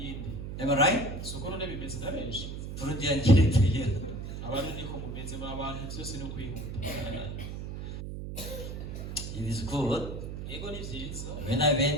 Am I right? Soko none bimeze na benshi. Burundian character here. Abantu niko mumeze mu abantu byose no kwihuta. It is good. Yego ni vyiza. When I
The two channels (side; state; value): right; noise; hum, 7 dB below the sound